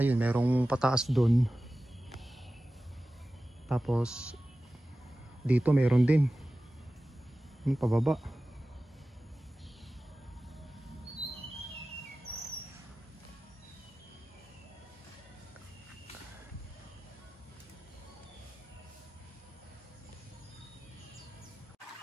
merong pataas doon. Tapos dito meron din. Yung pababa.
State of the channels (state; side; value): normal; both; correlation 0.95